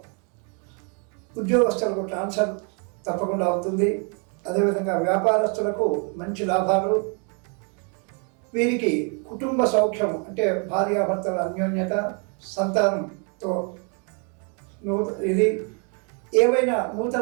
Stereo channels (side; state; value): left; quieter; 37.8 dB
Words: ఉద్యోగస్తులకు ట్రాన్స్ఫర్ తప్పకుండా అవుతుంది. అదేవిధంగా వ్యాపారస్తులకు మంచి లాభాలు, వీరికి కుటుంబ సౌఖ్యం అంటే భార్యాభర్తల అన్యోన్యత, సంతానంతో ఇది ఏవైనా